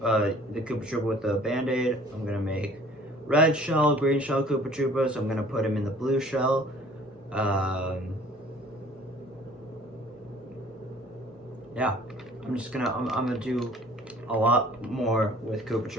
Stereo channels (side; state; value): both; normal; correlation 0.53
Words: Troopa with the Band-Aid. I'm gonna make red shell, green shell Koopa Troopas. I'm gonna put him in the blue shell. Yeah, I'm gonna do a lot more with Koopa